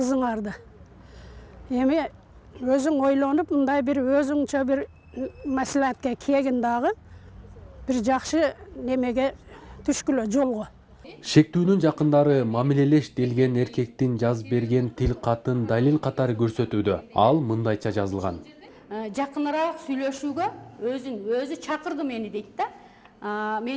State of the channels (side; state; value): both; identical; correlation 1.00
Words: Эми өзүң ойлонуп, мындай бир өзүңчө бир маслихатка келгин дагы бир жакшы немеге түшкүлө жолго. Шектүүнүн жакындары мамилелеш делген эркектин жазып берген тил катын далил катары көрсөтүүдө. Ал мындайча жазылган. Жакыныраак сүйлөшүүгө өзү чакырды мени дейт да.